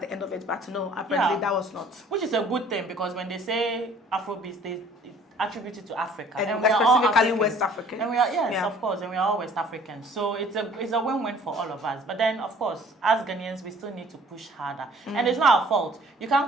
the end of it. But no, apparently that was not. Which is a good thing, because when they say Afrobeat, they attribute it to Africa. And we are specifically West African. And we are, of course, and we are all West Africans. So it's a win-win for all of us. But then, of course, as Ghanaians, we still need to push harder. And it's not our fault. You can't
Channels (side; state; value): both; normal; correlation 0.53